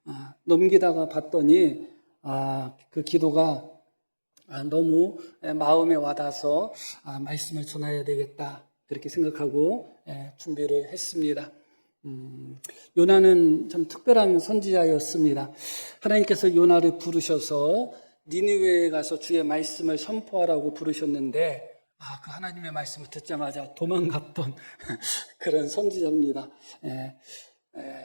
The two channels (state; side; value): inverted; both; correlation -1.00